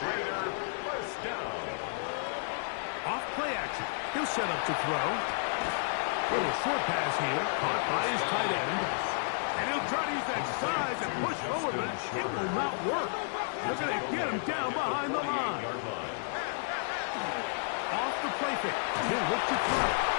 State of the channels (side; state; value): right; silent; digital silence